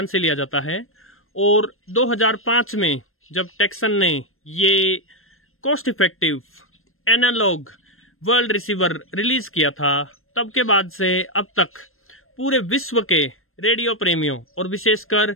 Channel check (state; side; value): late; right; 0.61 ms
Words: से लिया जाता है और 2005 में जब टेक्सन ने ये cost effective analog world receiver release किया था, तब के बाद से अब तक पूरे विश्व के रेडियो प्रेमियों और विशेषकर